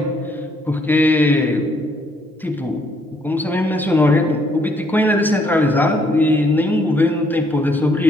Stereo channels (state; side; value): normal; both; correlation 0.69